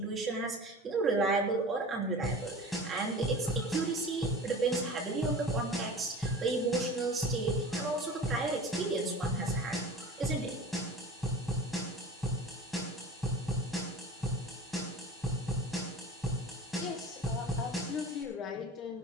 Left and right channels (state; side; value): normal; both; correlation 0.37